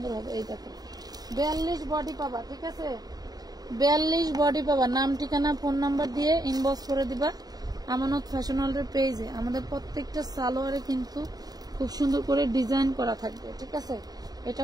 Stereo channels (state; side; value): late; left; 0.19 ms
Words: হবে। এই দেখো, 42 বডি পাবা। ঠিক আছে, 42 বডি পাবা। নাম ঠিকানা ফোন নাম্বার দিয়ে ইনবক্স করে দিবা আমানত ফ্যাশন ওয়ার্ল্ডের পেজে। আমাদের প্রত্যেকটা সালোয়ারে কিন্তু খুব সুন্দর করে ডিজাইন করা থাকবে। ঠিক আছে, এটা